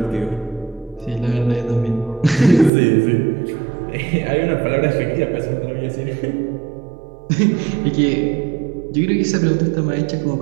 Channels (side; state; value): left; drops out; at 2.7 s